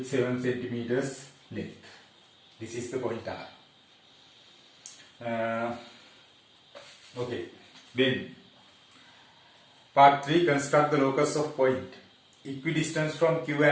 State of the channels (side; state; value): both; identical; correlation 1.00